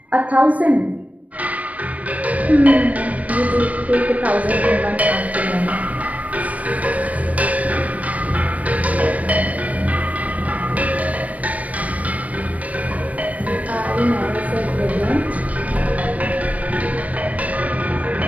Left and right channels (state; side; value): late; left; 0.068 ms